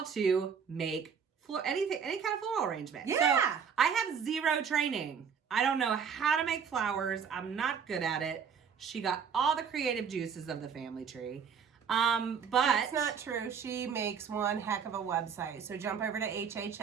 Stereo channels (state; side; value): quieter; left; 6.8 dB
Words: to make any kind of floral arrangement. Yeah. So I have zero training. I don't know how to make flowers. I'm not good at it. She got all the creative juices of the family tree. But that's not true. She makes one heck of a website. So jump over to